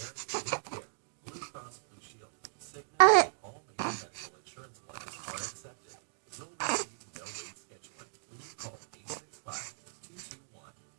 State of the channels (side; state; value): left; silent; digital silence